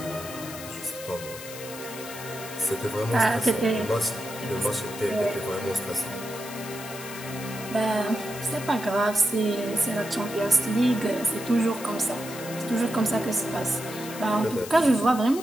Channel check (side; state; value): left; noise; hiss, 12 dB below the sound